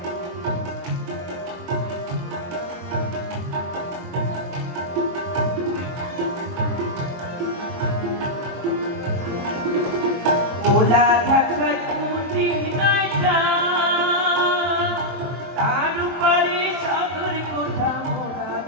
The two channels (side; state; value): left; late; 22 ms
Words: ভোলা ঘাটায় কুটি নাইটা, তার উপরে চাদর কোঠা, ভোলা